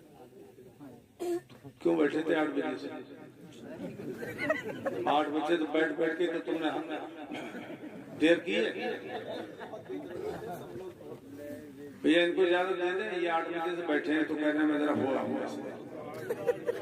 کیوں بیٹھے تھے 8 بجے سے؟ 8 بجے تو بیٹھ کے تو تم نے دیر کی ہے بھیا، ان کو اجازت دے دیں، یہ 8 بجے سے بیٹھے ہیں تو کہنا میں ذرا ہو رہا ہوں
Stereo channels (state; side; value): identical; both; correlation 1.00